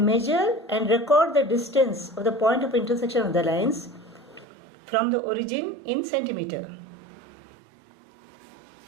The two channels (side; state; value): left; drops out; at 4.5 s